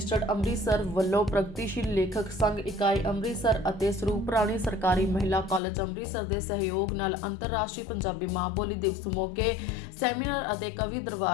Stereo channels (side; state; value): right; drops out; at 5.6 s